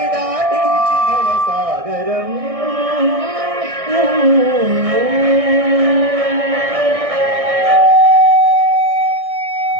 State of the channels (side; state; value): left; late; 1.6 ms